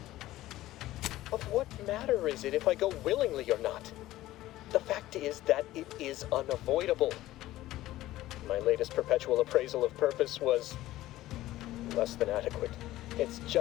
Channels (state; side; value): quieter; right; 15.7 dB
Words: Of what matter is it if I go willingly or not? The fact is that it is unavoidable. My latest perpetual appraisal of purpose was less than adequate. It's